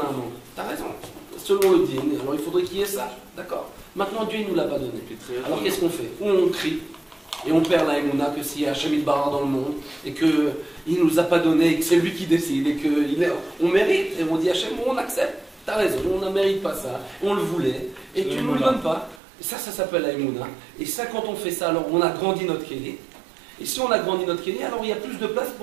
un manque. T'as raison. Selon le dîner, alors il faudrait qu'il y ait ça. D'accord. Maintenant Dieu il nous l'a pas donné. Alors qu'est-ce qu'on fait? Ou on crie. Et on perd la Emouna que s'il y a Hachem Barra dans le monde et qu'il ne nous a pas donné et que c'est lui qui décide et qu'on mérite et on dit Hachem, on accepte, t'as raison, on ne mérite pas ça, on le voulait et tu ne nous le donnes pas. Et ça s'appelle la Emouna. Et ça, quand on fait ça, alors on a grandi notre Kéli. Et si on a grandi notre Kéli, alors il y a plus de place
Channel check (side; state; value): left; drops out; at 19.2 s